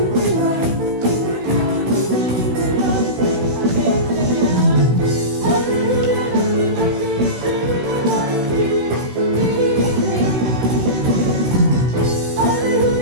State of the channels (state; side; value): late; left; 16 ms